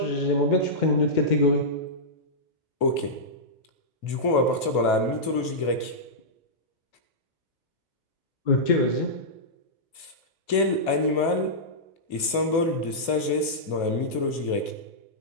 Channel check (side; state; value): right; late; 2.5 ms